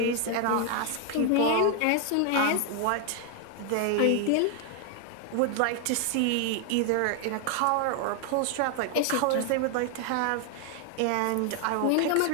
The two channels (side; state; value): both; different; correlation 0.00